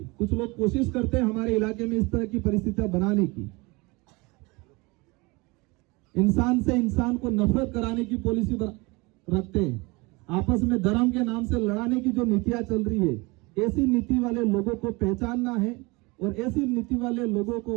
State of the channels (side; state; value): left; quieter; 25.4 dB